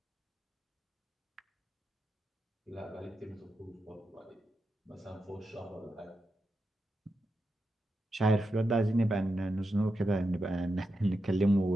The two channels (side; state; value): both; normal; correlation 0.88